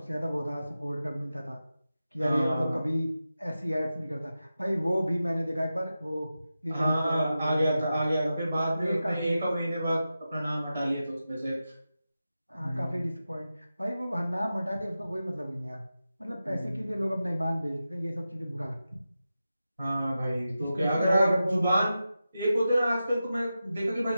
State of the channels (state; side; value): inverted; both; correlation -0.92